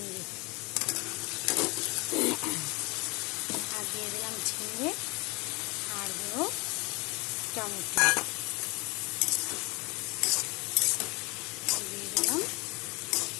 আর দিয়ে দিলাম ঝিঙে, আর দেবো টমেটো, দিয়ে দিলাম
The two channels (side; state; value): right; quieter; 27.2 dB